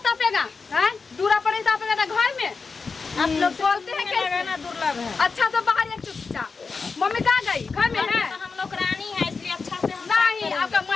तापेगा है, दूरा पर नहीं तापेगा तो घर में। आप लोग बोलते हैं कैसे ना दुर्लभ है। अच्छा से बाहर एक चुपचाप। मम्मी कहाँ गई, घर में है? तो हम लोग रानी है इसलिए अच्छा से हम नहीं, आपका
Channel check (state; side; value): quieter; right; 4.7 dB